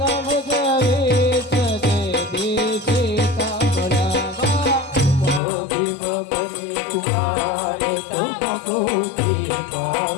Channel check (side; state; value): right; drops out; at 5.4 s